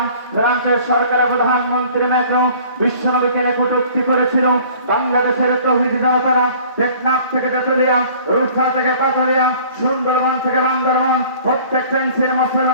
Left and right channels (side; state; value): both; inverted; correlation -0.50